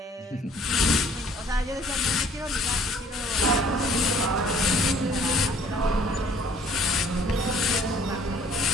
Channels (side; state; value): both; normal; correlation 0.57